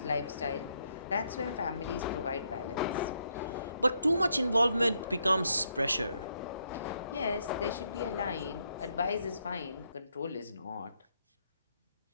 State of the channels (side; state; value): both; inverted; correlation -0.76